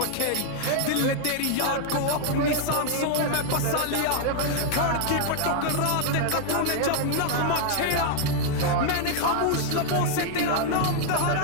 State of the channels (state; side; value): different; both; correlation 0.00